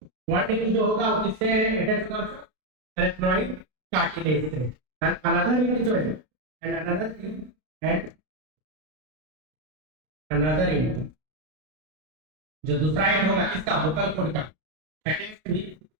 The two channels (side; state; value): left; late; 32 ms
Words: वन इंड जो होगा वो किससे अटैच होगा, एरेथ्रोइड कार्टिलेज से। एंड अनदर इंड जो है एंड अनदर इंड जो दूसरा इंड होगा किसका, वोकल कोड का अटैच्ड विद